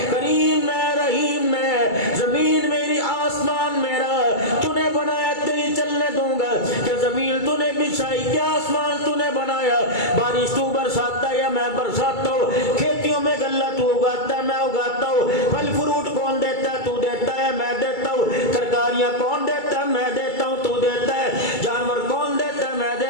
کریم میں، رحیم میں، زمین میری، آسمان میرا، تو نے بنایا تیری چلنے دوں گا کہ زمین تو نے بچھائی، کیا آسمان تو نے بنایا، بارش تو برساتا ہے یا میں برساتا ہوں، کھیتیوں میں غلہ تو اگاتا ہے میں اگاتا ہوں، پھل فروٹ کون دیتا ہے؟ تو دیتا ہے میں دیتا ہوں، ترکاریاں کون دیتا ہے؟ میں دیتا ہوں تو دیتا ہے، جانور کون دیتا ہے؟ میں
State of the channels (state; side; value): late; right; 2.3 ms